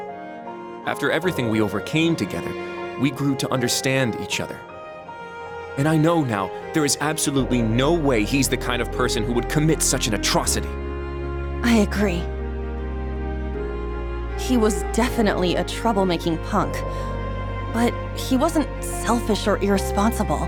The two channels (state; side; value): identical; both; correlation 1.00